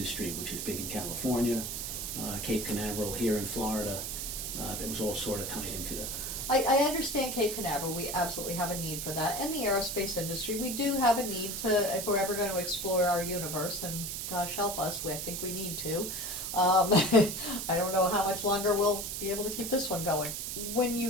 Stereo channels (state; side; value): noise; right; hiss, 4 dB below the sound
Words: which is big in California, Cape Canaveral here in Florida. That was all sort of tied into it. I understand Cape Canaveral. We absolutely have a need for that. And the aerospace industry, we do have a need to, if we're ever going to explore our universe, and gosh help us, I think we need to. I don't know how much longer we'll be able to keep this one going. When